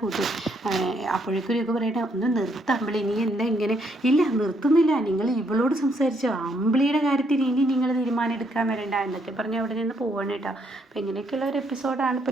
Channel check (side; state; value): both; normal; correlation 0.72